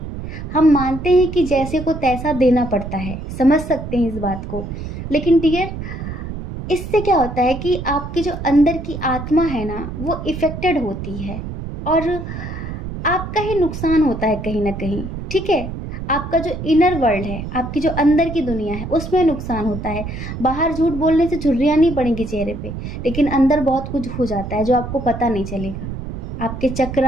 हम मानते हैं कि जैसे को तैसा देना पड़ता है, समझ सकते हैं इस बात को। लेकिन डियर, इससे क्या होता है कि आपकी जो अंदर की आत्मा है ना, वो इफ़ेक्टेड होती है और आपका ही नुकसान होता है कहीं ना कहीं, ठीक है। आपका जो इनर वर्ल्ड है, आपकी जो अंदर की दुनिया है, उसमें नुकसान होता है। बाहर झूठ बोलने से झुर्रियाँ नहीं पड़ेंगी चेहरे पे, लेकिन अंदर बहुत कुछ हो जाता है जो आपको पता नहीं चलेगा। आपके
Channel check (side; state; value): right; noise; rumble, 7 dB below the sound